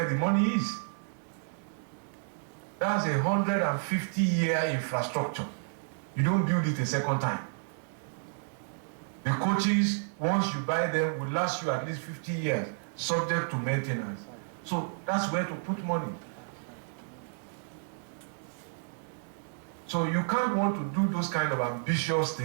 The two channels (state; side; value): silent; left; digital silence